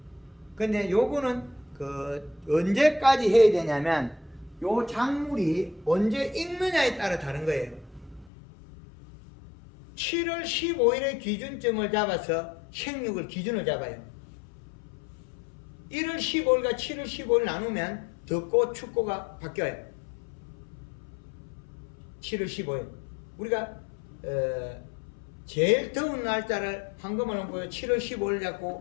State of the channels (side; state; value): right; drops out; at 8.3 s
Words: 근데 요거는 그 언제까지 해야 되냐면 요 작물이 언제 익느냐에 따라 다른 거예요. 7월 15일의 기준점을 잡아서 생육을 기준을 잡아요. 1월 15일과 7월 15일 나누면 덥고 춥고가 바뀌어요. 7월 15일. 우리가 제일 더운 날짜를 황금을 보여 7월 15일